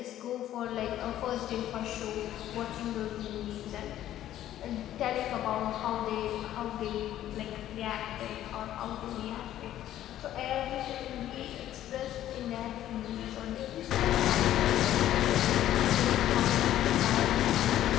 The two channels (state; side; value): quieter; right; 12.5 dB